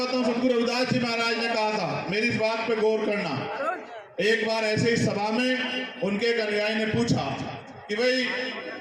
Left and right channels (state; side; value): identical; both; correlation 1.00